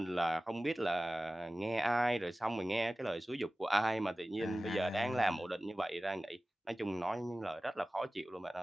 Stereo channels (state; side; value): normal; both; correlation 0.96